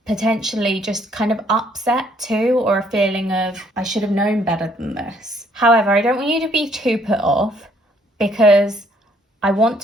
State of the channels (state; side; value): normal; both; correlation 0.65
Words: potentially just kind of upset too, or a feeling of, I should have known better than this. However, I don't want you to be too put off, because I want